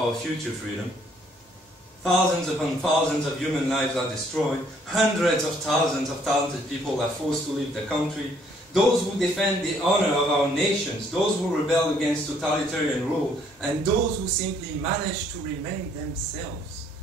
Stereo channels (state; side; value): normal; both; correlation 0.64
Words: our future freedom. Thousands upon thousands of human lives are destroyed. Hundreds of thousands of talented people are forced to leave the country. Those who defend the honor of our nations, those who rebel against totalitarian rule, and those who simply manage to remain themselves